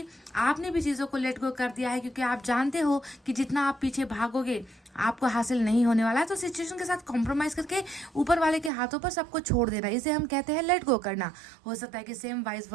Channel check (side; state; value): left; drops out; at 8.7 s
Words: आपने भी चीज़ों को लेट गो कर दिया है, क्योंकि आप जानते हो कि जितना आप पीछे भागोगे आपको हासिल नहीं होने वाला है। तो सिचुएशन के साथ कॉम्प्रोमाइज़ करके ऊपर वाले के हाथों पर सबको छोड़ देना, इसे हम कहते हैं लेट गो करना। हो सकता है कि सेम वाइस